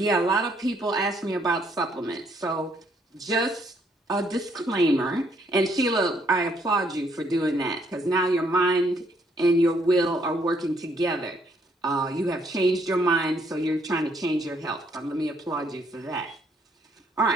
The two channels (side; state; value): both; normal; correlation 0.69